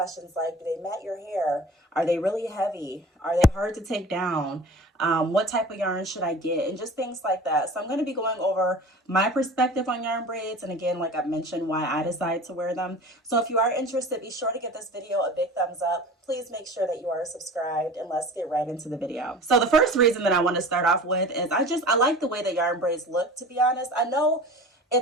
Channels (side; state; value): both; normal; correlation 0.39